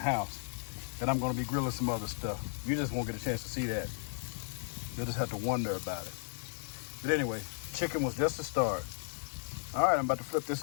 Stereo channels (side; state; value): right; silent; 55 dB below the other